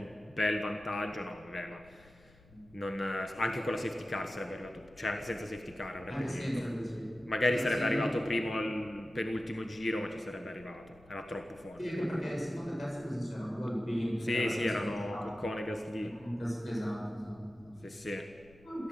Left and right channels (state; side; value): noise; left; rumble, 26 dB below the sound